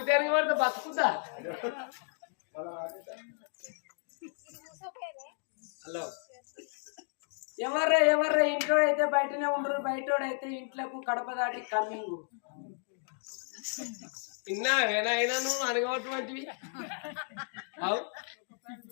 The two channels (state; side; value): silent; right; 56 dB below the other